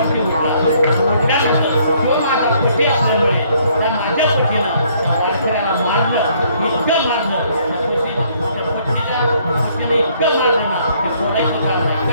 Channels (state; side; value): inverted; both; correlation -0.65